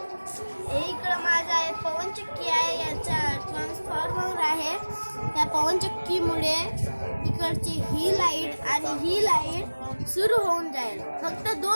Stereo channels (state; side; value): inverted; both; correlation -1.00